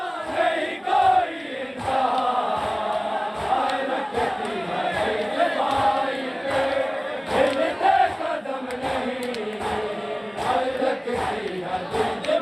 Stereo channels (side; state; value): both; identical; correlation 1.00